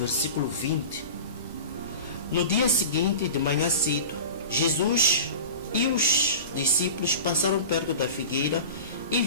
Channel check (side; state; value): both; inverted; correlation -0.34